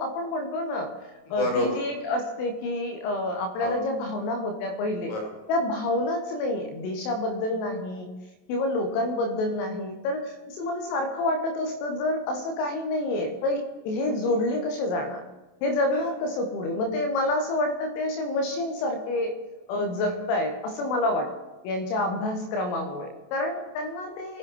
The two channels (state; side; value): late; right; 28 ms